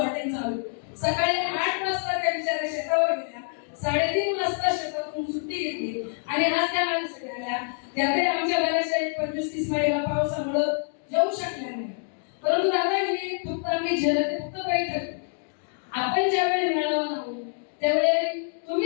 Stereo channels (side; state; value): right; silent; 58 dB below the other